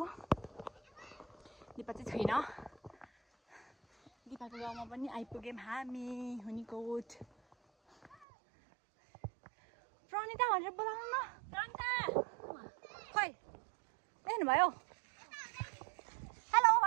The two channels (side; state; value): left; drops out; at 8.2 s